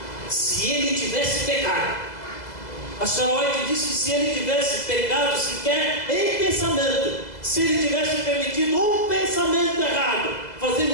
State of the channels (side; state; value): right; late; 2.0 ms